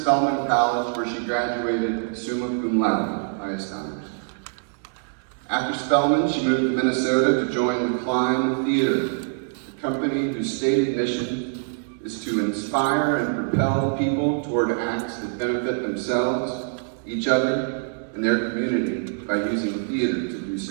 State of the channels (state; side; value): silent; left; digital silence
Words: College, where she graduated summa cum laude, highest honors. After Spelman, she moved to Minnesota to join the Klein Theater, a company whose stated mission is to inspire and propel people toward acts that benefit themselves, each other, and their community by using theater to do